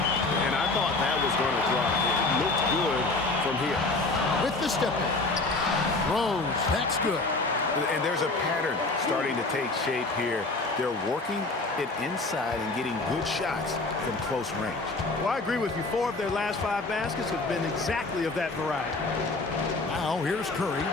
And I thought that was going to drop. It looked good from here. With the step back. Rose, that's good. And there's a pattern starting to take shape here. They're working it inside and getting good shots from close range. Well, I agree with you. 4 of their last 5 baskets have been exactly of that variety. Now here's Curry.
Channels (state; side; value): quieter; right; 3.3 dB